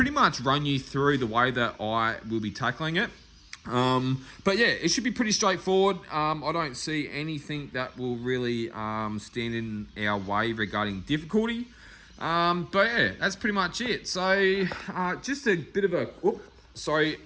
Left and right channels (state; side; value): identical; both; correlation 1.00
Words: much run you through the way that I will be tackling it. But yeah, it should be pretty straightforward. I don't see anything that will really stand in our way regarding difficulty. But yeah, that's pretty much it. So just a bit of